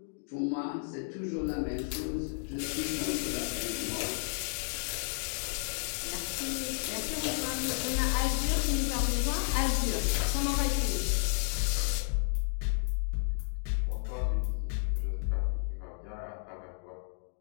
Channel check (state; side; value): silent; right; 56 dB below the other